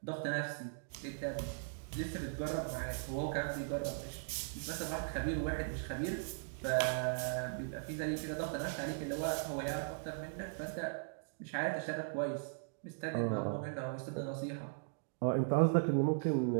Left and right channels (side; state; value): left; silent; digital silence